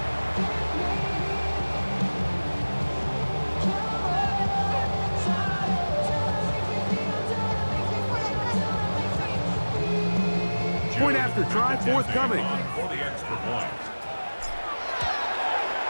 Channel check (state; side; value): inverted; both; correlation -1.00